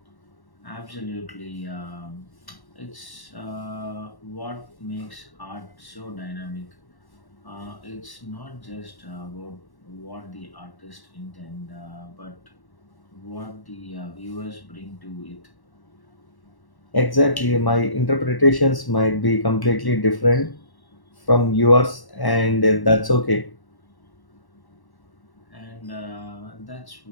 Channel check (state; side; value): late; right; 1.1 ms